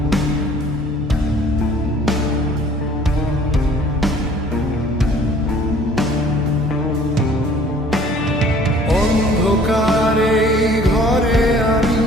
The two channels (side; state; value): both; normal; correlation 0.54